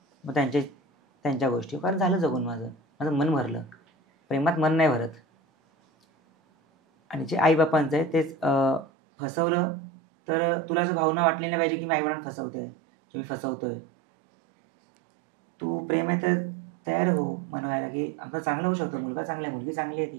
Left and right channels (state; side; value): drops out; left; at 8.8 s